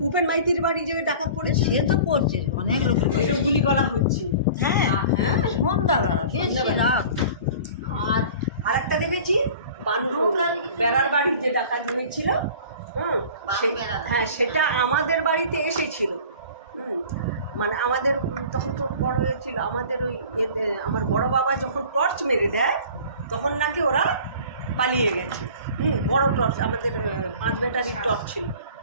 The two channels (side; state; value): both; inverted; correlation -0.42